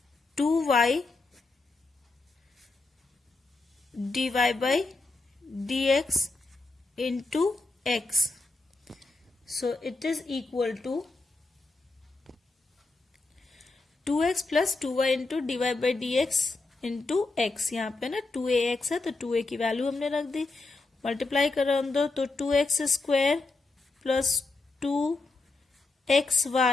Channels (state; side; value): quieter; right; 3.5 dB